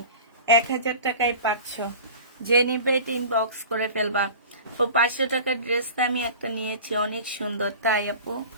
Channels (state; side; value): inverted; both; correlation -0.38